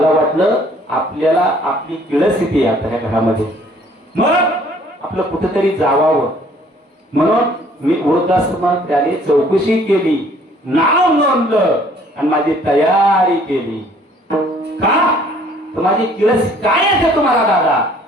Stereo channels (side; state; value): both; normal; correlation 0.58